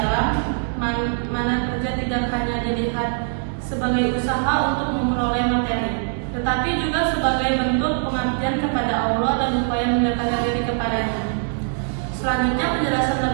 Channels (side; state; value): left; silent; digital silence